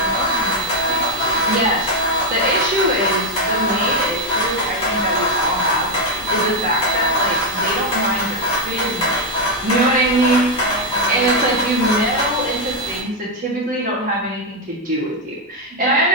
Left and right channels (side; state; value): both; normal; correlation 0.03